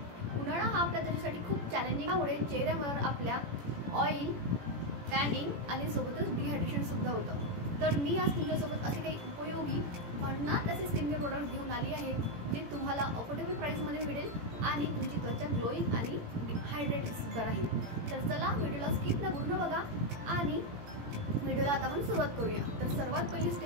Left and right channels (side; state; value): left; late; 17 ms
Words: उन्हाळा हा आपल्या त्वचेसाठी खूप चॅलेंजिंग आहे। चेहऱ्यावर आपल्या ऑइल, टॅनिंग आणि सोबतच डिहायड्रेशन सुद्धा होतं। तर मी आज तुमच्यासोबत असे काही उपयोगी भन्नाट असे स्किन केअर प्रोडक्ट घेऊन आली आहे जे तुम्हाला अफोर्डेबल प्राइसमध्ये मिळेल आणि तुमची त्वचा ग्लोईंग आणि हायड्रेटेड सुद्धा राहील। तर चला व्हिडिओला स्किप न पूर्ण बघा आणि व्हिडिओला आता आपण सुरुवात करूया। तर सर्वात पहिली